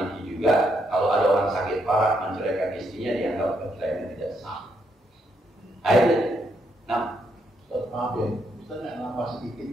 juga kalau ada orang sakit parah menceraikan istrinya dianggap perceraian tidak sah. Ayo, nah, maaf ya, Ustaz nggak nampak sedikit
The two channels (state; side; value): normal; both; correlation 0.77